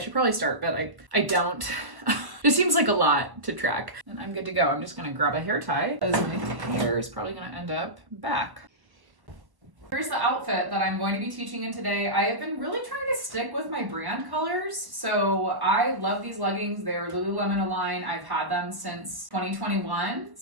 probably start, but I don't. It seems like a lot to track. And I'm good to go. I'm just gonna grab a hair tie because my hair is probably gonna end up back. Here's the outfit that I'm going to be teaching in today. I have been really trying to stick with my brand colors. So I love these leggings. They're Lululemon Align. I've had them since 2021.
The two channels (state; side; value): late; left; 1.1 ms